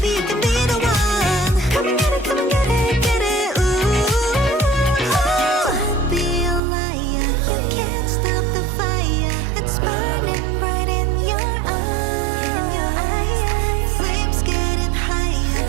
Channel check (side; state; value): left; drops out; at 6.6 s